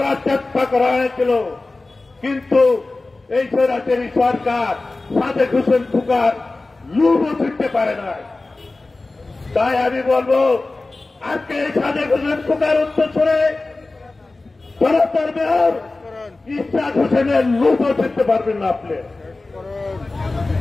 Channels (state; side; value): quieter; right; 3.3 dB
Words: চেষ্টা করা হয়েছিল, কিন্তু এই স্বৈরাচারী সরকার সাদেক হোসেন খোকার লুবও ছুটতে পারে না। তাই আমি বলবো আজকে এই সাদেক হোসেন খোকার উত্তরসূরি জনতার মেয়র ইশাক হোসেনের লুবও ছুটতে পারবেন না আপনি।